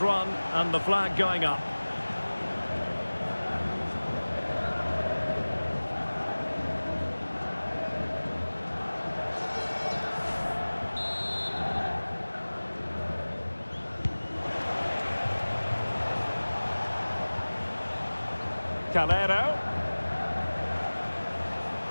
run, and the flag going up. Calero.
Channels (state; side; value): inverted; both; correlation -1.00